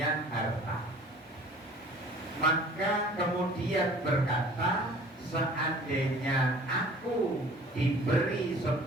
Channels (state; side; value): normal; both; correlation 0.48